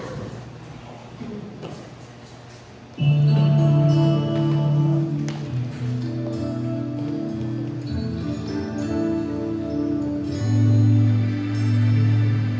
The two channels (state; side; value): identical; both; correlation 1.00